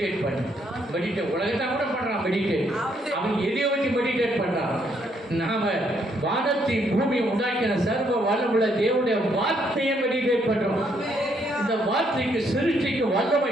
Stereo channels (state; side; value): normal; both; correlation 0.72